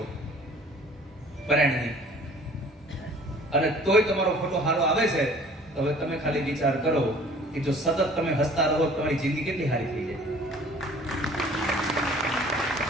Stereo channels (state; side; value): normal; both; correlation 0.51